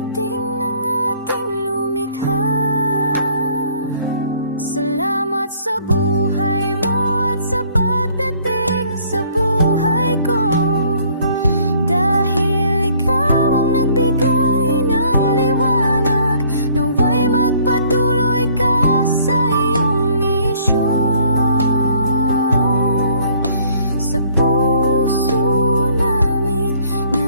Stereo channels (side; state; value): both; inverted; correlation -0.60